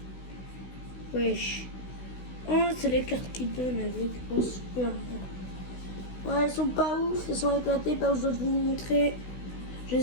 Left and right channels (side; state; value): right; late; 16 ms